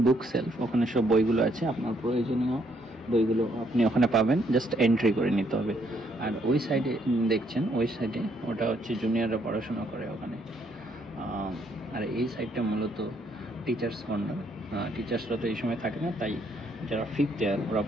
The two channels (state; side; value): normal; both; correlation 0.71